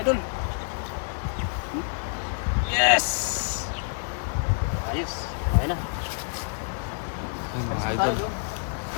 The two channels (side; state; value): right; silent; 59 dB below the other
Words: idol. Yes! Ayos. Okay na. Ay, mga idol.